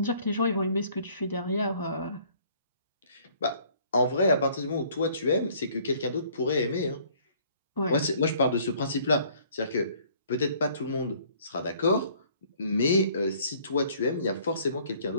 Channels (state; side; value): inverted; both; correlation -0.59